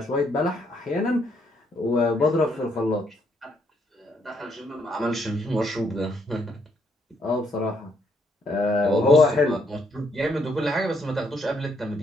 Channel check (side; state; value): both; normal; correlation 0.72